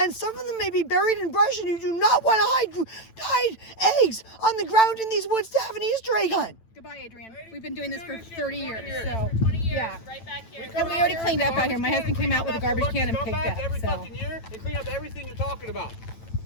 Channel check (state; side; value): late; right; 9.0 ms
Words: some of them may be buried in brush, and you do not want to hide eggs on the ground in these woods to have an Easter egg hunt. Goodbye, Adrienne. We've been doing this for 30 years, so, yeah. Right back here. And we already cleaned up out here. My husband came out with a garbage can and picked up, every fucking year and clean up everything you're talking about.